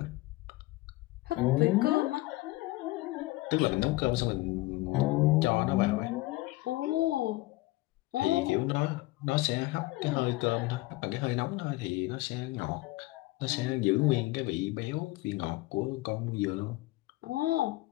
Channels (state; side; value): quieter; right; 19.8 dB